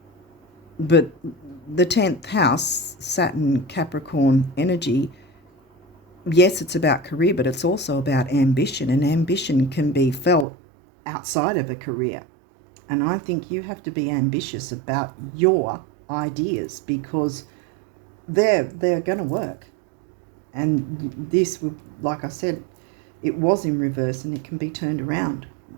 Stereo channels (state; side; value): drops out; left; at 10.5 s